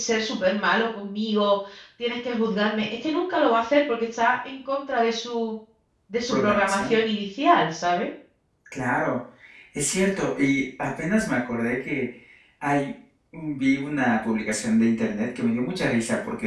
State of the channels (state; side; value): identical; both; correlation 1.00